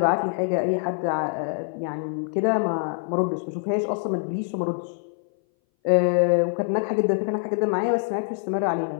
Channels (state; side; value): silent; right; 59 dB below the other